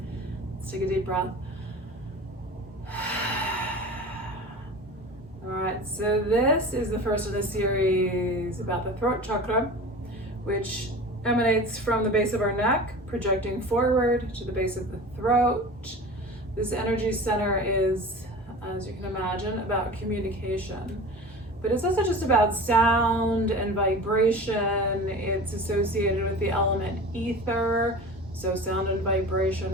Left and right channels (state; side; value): normal; both; correlation 0.36